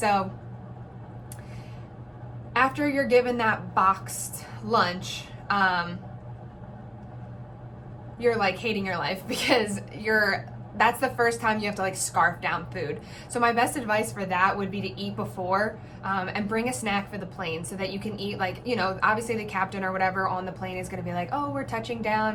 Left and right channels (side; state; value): both; identical; correlation 1.00